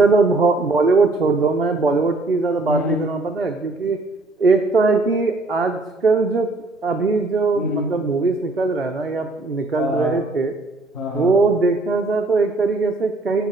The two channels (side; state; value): left; quieter; 3.0 dB